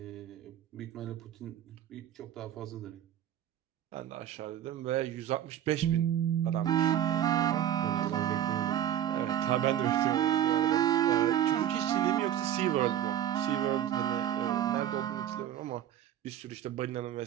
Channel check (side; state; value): left; quieter; 10.9 dB